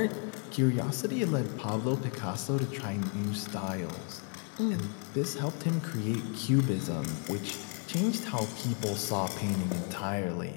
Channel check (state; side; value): quieter; right; 38.8 dB